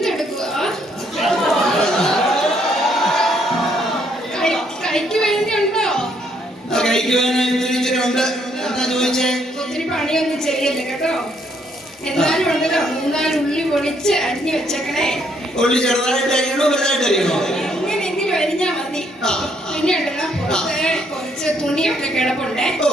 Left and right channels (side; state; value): both; normal; correlation 0.70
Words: കഴിക്കുവാനുണ്ട്. എന്താ ചോദിച്ചേ? ഒത്തിരി പണിയൊന്നും ചെയ്യല്ലേ കേട്ടോ. എന്നാലും ഉണ്ടല്ലോ 3-4 ഉള്ളി പൊളിച്ച് അരിഞ്ഞു വെച്ചേക്കണേ. ഉള്ളി ചെറുതായിട്ട് അരിയണോ വലുതായിട്ട് അരിയണോ? എങ്ങനെയെങ്കിലും അരിഞ്ഞാ മതി. പിന്നെ ഉണ്ടല്ലോ കുറച്ച് തുണിയൊക്കെ കിടപ്പുണ്ടേ.